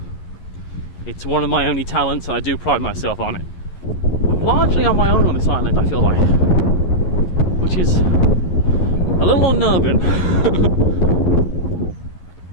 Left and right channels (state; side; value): late; right; 11 ms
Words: It's one of my only talents, and I do pride myself on it. I'm largely on my own on this island, I feel like, which is a little unnerving.